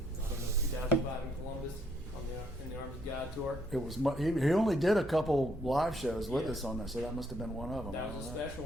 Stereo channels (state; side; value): normal; both; correlation 0.70